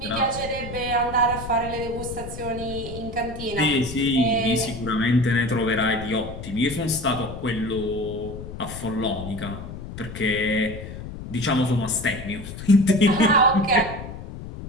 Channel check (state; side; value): noise; left; rumble, 10 dB below the sound